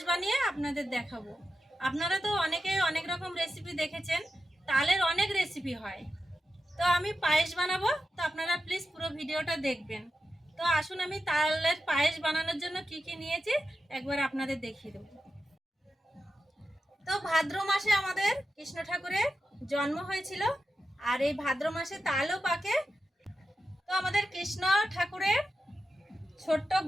বানিয়ে আপনাদের দেখাবো। আপনারা তো অনেকেই অনেক রকম রেসিপি দেখেছেন, তালের অনেক রেসিপি হয়। তো আমি পায়েস বানাবো, তো আপনারা প্লিজ পুরো ভিডিওটা দেখবেন। তো আসুন আমি তালের পায়েস বানানোর জন্য কি কি নিয়েছি একবার আপনাদের দেখিয়ে দেবো। তো ভাদ্র মাসে আমাদের কৃষ্ণ ঠাকুরের জন্ম হয়েছিল, আর এই ভাদ্র মাসে তালও পাকে। তো আমাদের কৃষ্ণ ঠাকুরের ছোট্ট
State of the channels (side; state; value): both; normal; correlation 0.90